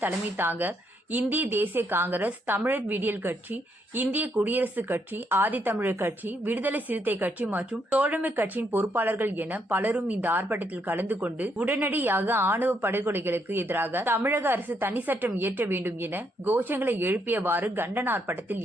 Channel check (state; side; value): normal; both; correlation 0.75